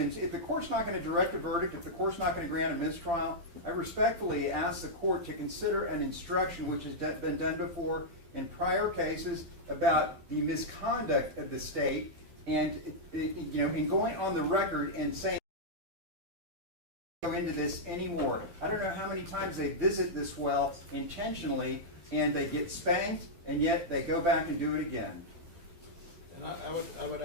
the court's not going to direct a verdict, if the court's not going to grant a mistrial, I respectfully ask the court to consider an instruction which has been done before in prior cases about the misconduct of the state, and in going on the record and saying go into this anymore. I don't know how many times they visit this well intentionally and they get spanked, and yet they go back and do it again. And I would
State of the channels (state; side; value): late; left; 12 ms